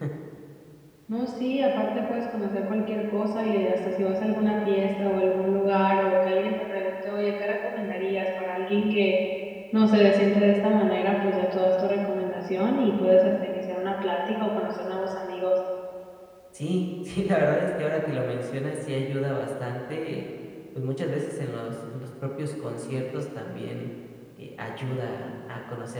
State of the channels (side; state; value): both; identical; correlation 1.00